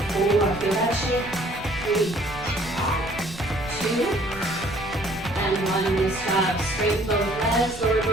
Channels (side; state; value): right; noise; rumble, 17 dB below the sound